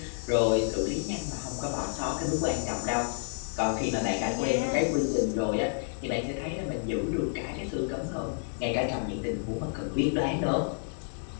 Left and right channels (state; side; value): silent; right; digital silence